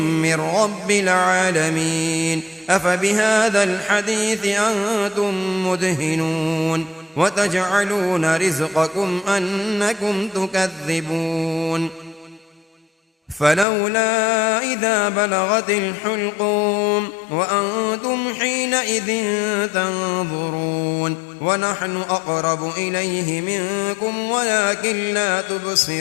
من رب العالمين أفبهذا الحديث أنتم مدهنون وتجعلون رزقكم أنكم تكذبون فلولا إذا بلغت الحلقوم وأنتم حينئذ تنظرون ونحن أقرب إليه منكم ولكن لا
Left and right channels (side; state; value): right; drops out; at 13.7 s